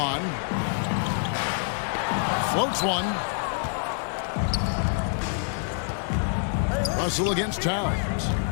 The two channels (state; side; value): silent; right; digital silence